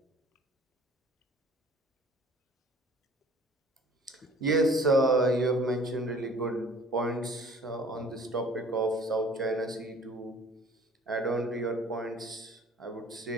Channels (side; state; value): both; normal; correlation 0.51